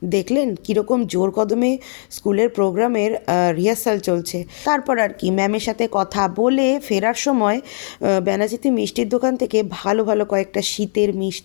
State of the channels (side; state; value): right; silent; 64 dB below the other